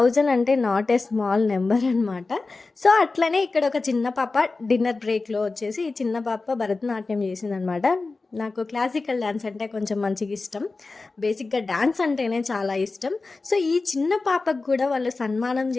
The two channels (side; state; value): right; quieter; 3.7 dB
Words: అంటే నాట్ ఏ స్మాల్ నంబర్ అనమాట. సో, అట్లనే ఇక్కడ ఒక చిన్న పాప డిన్నర్ బ్రేక్‌లో వచ్చేసి ఈ చిన్న పాప భరతనాట్యం చేసిందనమాట. నాకు క్లాసికల్ డాన్స్ అంటే కొంచెం మంచిగా ఇష్టం. బేసిక్‌గా డాన్స్ అంటేనే చాలా ఇష్టం. సో, ఈ చిన్న పాపకు కూడా వాళ్ళు సన్మానం